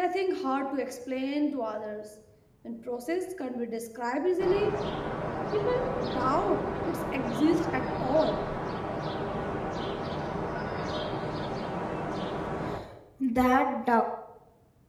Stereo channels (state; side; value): identical; both; correlation 1.00